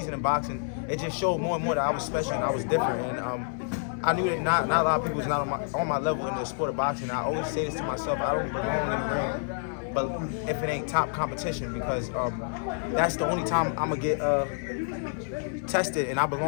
in boxing, it just showed more and more that I was special and I was different. And I knew that not a lot of people was not on my level in the sport of boxing. I always say this to myself: I don't belong in the ring, but if it ain't top competition, because that's the only time I'm gonna get tested. And I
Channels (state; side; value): silent; right; 56 dB below the other